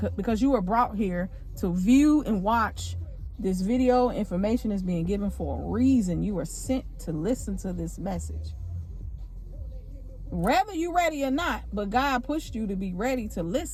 because you were brought here to view and watch this video, information is being given for a reason. You were sent to listen to this message. Whether you're ready or not, but God pushed you to be ready to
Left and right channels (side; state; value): both; identical; correlation 1.00